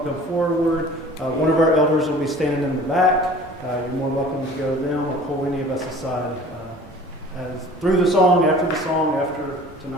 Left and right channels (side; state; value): both; normal; correlation 0.46